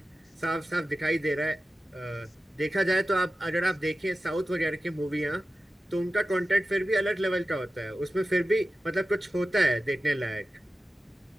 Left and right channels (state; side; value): normal; both; correlation 0.94